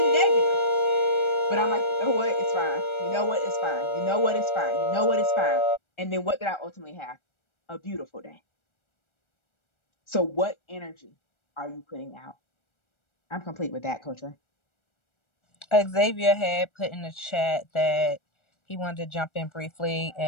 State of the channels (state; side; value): late; right; 1.4 ms